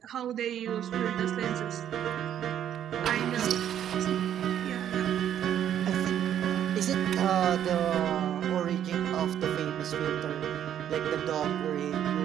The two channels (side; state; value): left; quieter; 10.2 dB